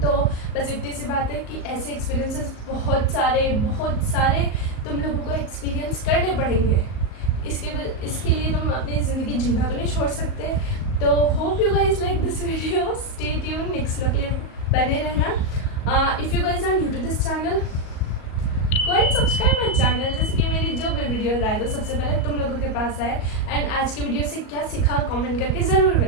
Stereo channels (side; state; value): right; late; 38 ms